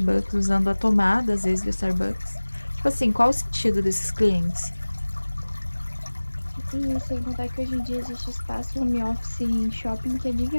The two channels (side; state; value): both; inverted; correlation -1.00